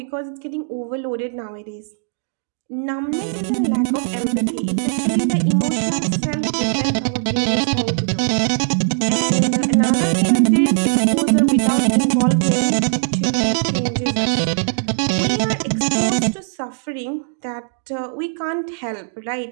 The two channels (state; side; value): silent; left; digital silence